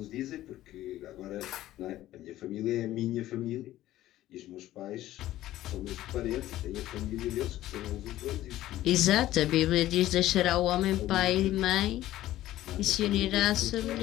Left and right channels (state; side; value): quieter; right; 14.6 dB